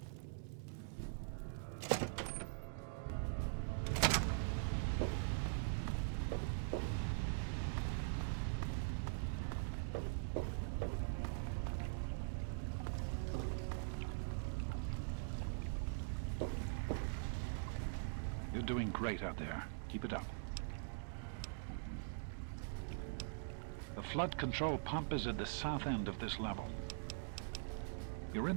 You're doing great out there. Keep it up. The flood control pump is at the south end of this level. You're in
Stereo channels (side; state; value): left; silent; digital silence